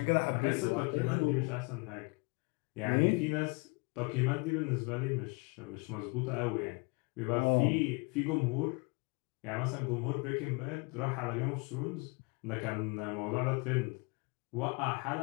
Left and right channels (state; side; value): quieter; right; 30.3 dB